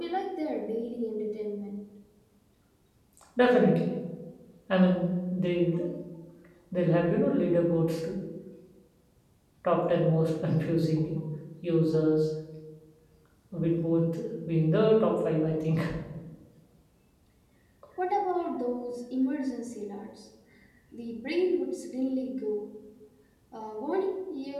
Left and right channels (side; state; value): both; identical; correlation 1.00